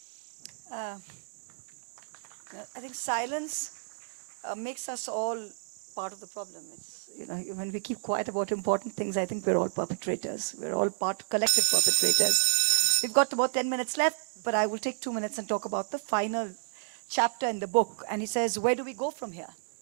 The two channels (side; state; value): left; silent; digital silence